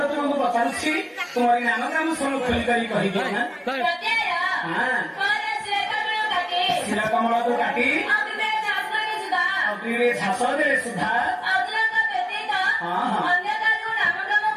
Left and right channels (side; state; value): both; identical; correlation 1.00